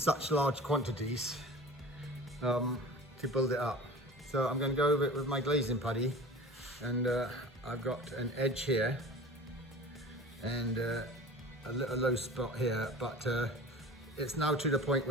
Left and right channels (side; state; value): both; normal; correlation 0.39